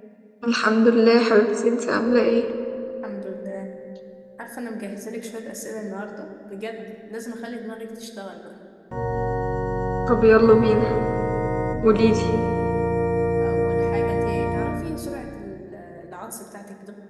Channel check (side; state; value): both; identical; correlation 1.00